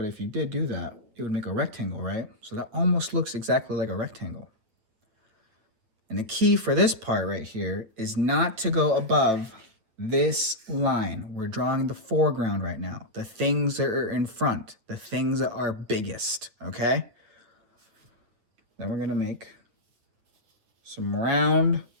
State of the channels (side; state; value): left; late; 9.1 ms